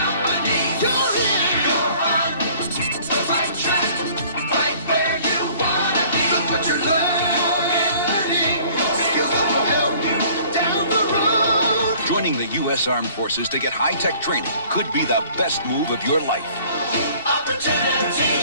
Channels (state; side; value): inverted; both; correlation -0.53